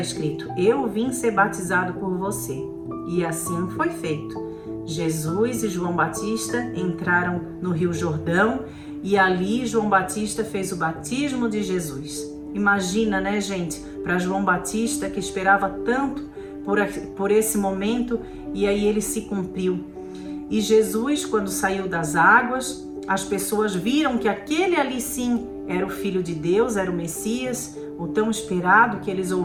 Eu vim ser batizado por você. E assim foi feito. Jesus e João Batista entraram no Rio Jordão e ali João Batista fez o batismo de Jesus. Imagina, né, gente, para João Batista, que esperava tanto por esse momento, e aí ele se cumpriu. E Jesus, quando saiu das águas, as pessoas viram que aquele ali sim era o Filho de Deus, era o Messias, o tão esperado que eles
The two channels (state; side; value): identical; both; correlation 1.00